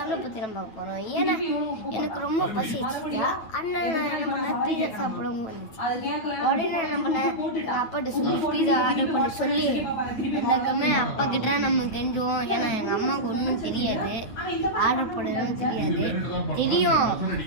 பற்றி நம்ம பார்க்க போகிறோம். ஏன்னா எனக்கு ரொம்ப பசிச்சுட்டா அண்ணன் நான் என்ன பண்ணேன், பீஸா சாப்பிடவும் வந்துச்சு. உடனே நான் என்ன பண்ணேன், எங்கள் அப்பாட்ட சொல்லி பீஸா ஆர்டர் பண்ணி சொல்லி எனக்குமே அப்பா கிட்ட நம்ம கெஞ்சுவோம். ஏன்னா எங்கள் அம்மாவுக்கு ஒன்றும் தெரியாது, ஆர்டர் போடணும்னு தெரியும்,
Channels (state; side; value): late; right; 9.1 ms